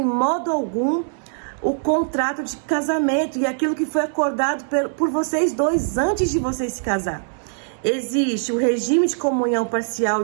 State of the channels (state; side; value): silent; left; digital silence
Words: modo algum o contrato de casamento e aquilo que foi acordado por vocês dois antes de vocês se casar. Existe o regime de comunhão parcial